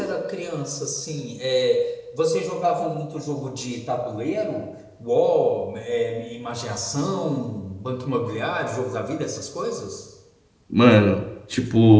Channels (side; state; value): both; identical; correlation 1.00